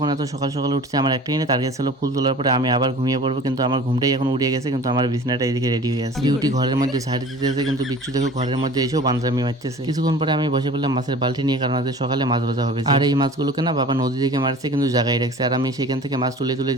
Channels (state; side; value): normal; both; correlation 0.43